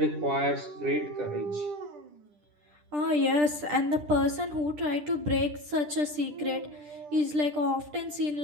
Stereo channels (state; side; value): late; left; 10 ms